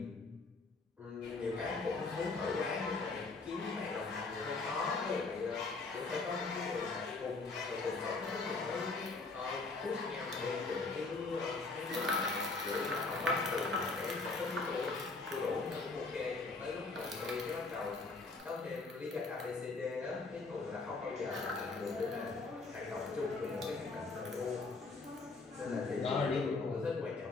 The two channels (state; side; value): quieter; right; 3.7 dB